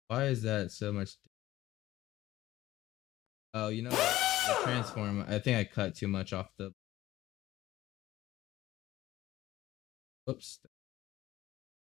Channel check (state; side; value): quieter; right; 15.5 dB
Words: Why is that so much? Oh, you know what? The transform. I think I cut too much off the. Whoops.